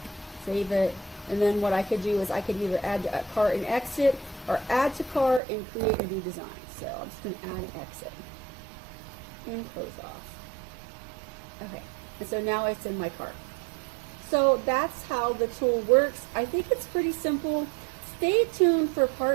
Save it. And then what I could do is I could either add to cart and exit, or add to cart and create a new design. So I'm just going to add and exit. And close off. Okay. And so now it's in my cart. So that's how the tool works. I think it's pretty simple. Stay tuned for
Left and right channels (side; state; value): left; drops out; at 5.4 s